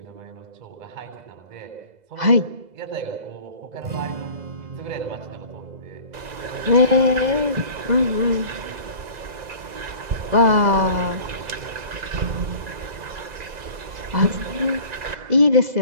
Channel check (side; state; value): left; late; 2.0 ms